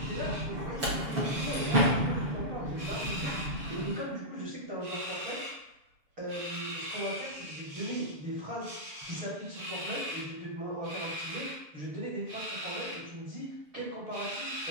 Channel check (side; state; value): left; late; 7.1 ms